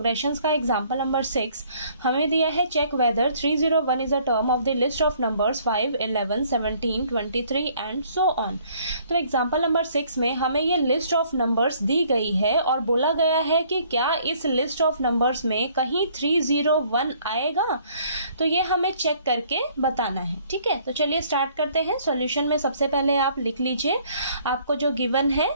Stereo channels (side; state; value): both; inverted; correlation -0.61